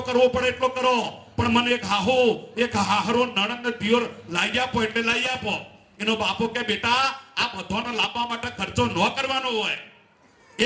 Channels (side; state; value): both; identical; correlation 1.00